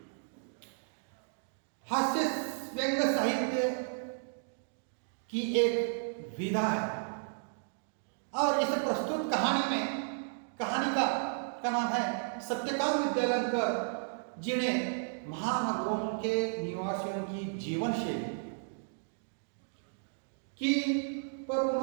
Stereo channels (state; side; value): silent; left; digital silence